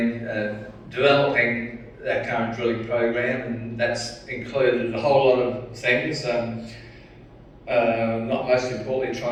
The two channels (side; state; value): both; identical; correlation 1.00